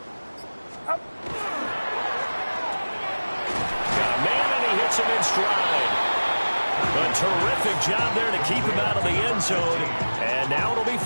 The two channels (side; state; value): both; inverted; correlation -1.00